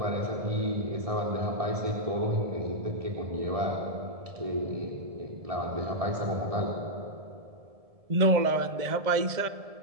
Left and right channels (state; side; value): late; left; 1.7 ms